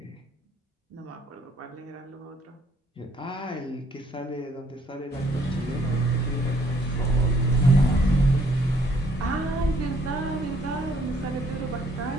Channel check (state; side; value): normal; both; correlation 0.65